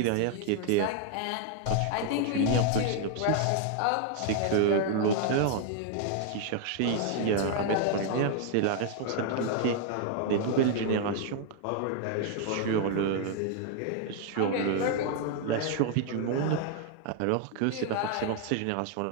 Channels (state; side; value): different; both; correlation 0.00